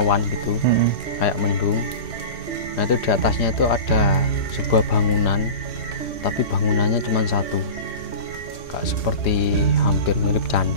gitu, kayak mendung. Nah itu di atasnya itu ada sebuah bangunan, tapi bangunannya cuma satu, kayak seperti hampir mirip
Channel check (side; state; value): right; late; 3.1 ms